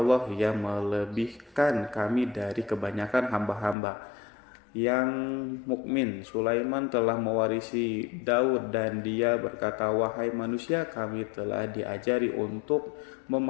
yang melebihkan kami dari kebanyakan hamba-hamba yang mukmin. Sulaiman telah mewarisi Daud dan dia berkata, wahai manusia, kami telah diajari untuk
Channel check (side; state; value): right; drops out; at 3.8 s